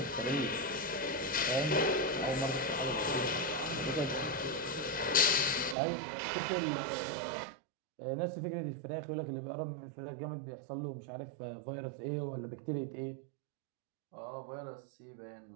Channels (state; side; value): drops out; left; at 5.8 s